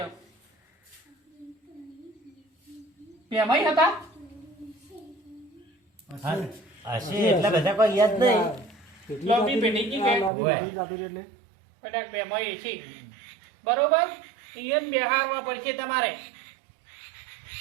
બેમાઈ હતા હશે એટલે બધા કોઈ યાદ નહીં લોબી પેઢી કી કે ઓવે કદાચ બેમાઈ છે બરોબર ઈયન બેહારવા પડશે તમારે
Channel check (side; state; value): left; drops out; at 10.3 s